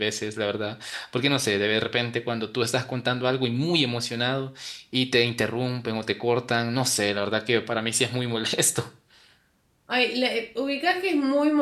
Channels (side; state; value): both; identical; correlation 1.00